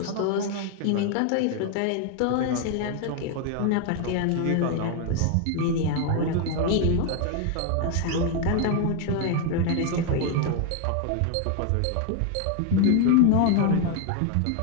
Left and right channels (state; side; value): different; both; correlation 0.01